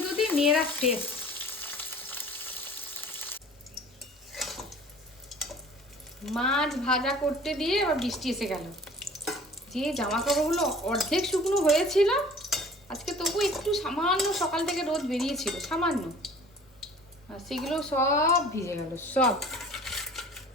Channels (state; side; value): normal; both; correlation 0.47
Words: ধুতে মেয়েরা শেষ। মাছ ভাজা করতে দিয়ে আবার বৃষ্টি এসে গেল। যে জামা কাপড়গুলো অর্ধেক শুকনো হয়েছিল আজকে, তবু একটু সামান্য সকাল থেকে রোদ বেরিয়েছিল সামান্য, আর সেগুলো সব ভিজে গেল, সব